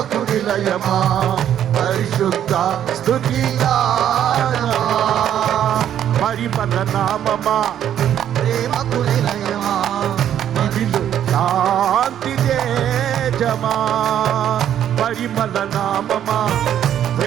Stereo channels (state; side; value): quieter; left; 10.3 dB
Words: నిలయమా, పరిశుద్ధ స్తుతి గానమా. పరిమళ నామమా ప్రేమకు నిలయమా, ఇదిలో శాంతి తేజమా. పరిమళ నామమా